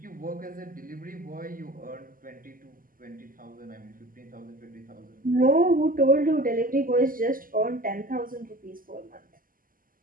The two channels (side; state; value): left; late; 0.41 ms